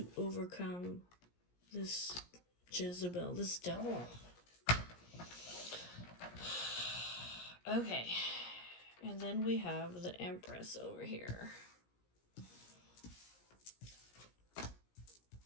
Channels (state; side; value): late; right; 17 ms